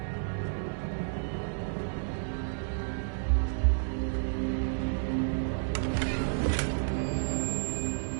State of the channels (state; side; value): silent; left; digital silence